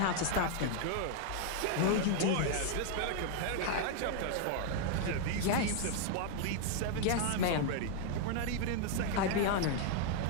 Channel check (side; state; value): both; different; correlation 0.00